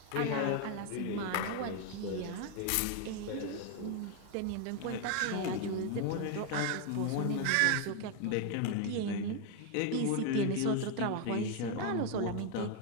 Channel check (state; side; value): different; both; correlation 0.01